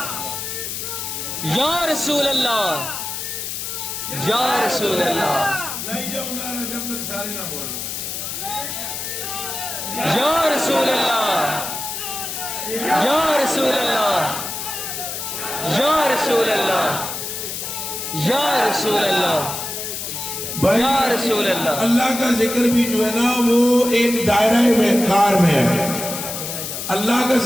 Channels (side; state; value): left; noise; hiss, 5 dB below the sound